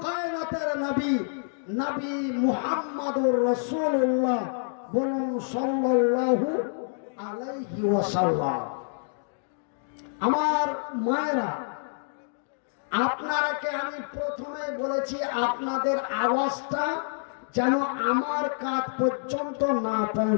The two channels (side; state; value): right; silent; digital silence